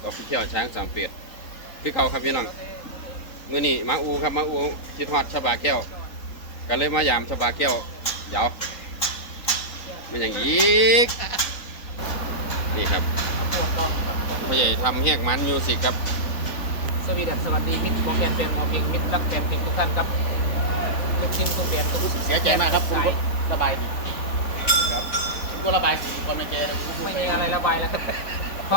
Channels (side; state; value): right; late; 3.9 ms